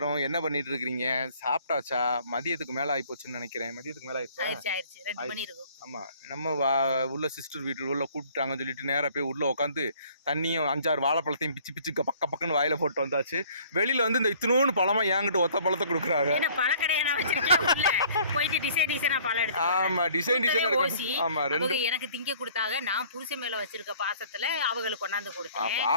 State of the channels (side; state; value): both; inverted; correlation -0.55